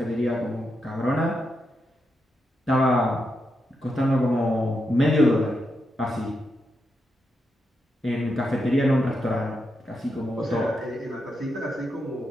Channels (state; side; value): normal; both; correlation 0.85